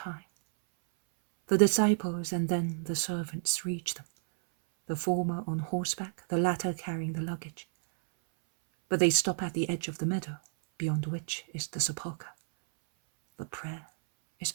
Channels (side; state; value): left; silent; 57 dB below the other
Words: The disciples and then the servants reach them, the former on horseback, the latter carrying the luggage. But they stop at the edge of the meadow, beyond which is the sepulchre. The prayer is